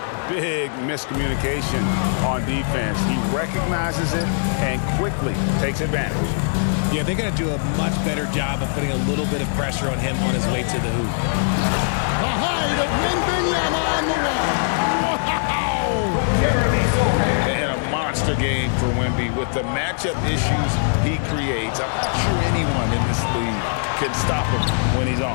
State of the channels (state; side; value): silent; right; 62 dB below the other